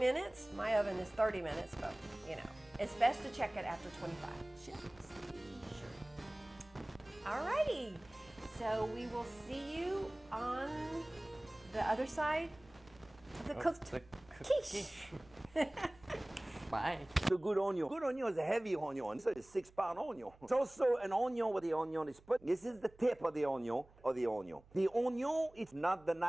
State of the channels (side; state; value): right; noise; hum, 26 dB below the sound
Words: My oven is 30 minutes, but you know, it's best to check it after 25. Just be sure. Alrighty. So we will see you on the other side of the cooked the quiche. Bye. The good onion. Good onion is a heavy onion. So it's 6-pound onion. It's also an onion where the onion is put. This is the tip of the onion. The onion is not the